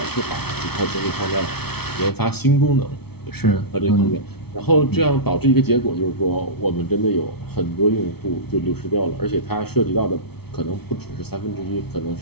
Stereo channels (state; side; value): late; right; 0.97 ms